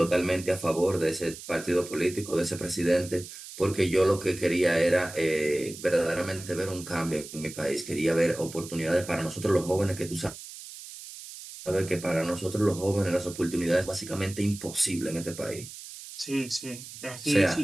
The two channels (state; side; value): noise; right; hiss, 13 dB below the sound